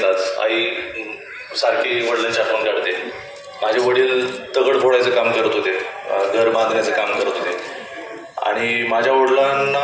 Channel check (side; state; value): both; identical; correlation 1.00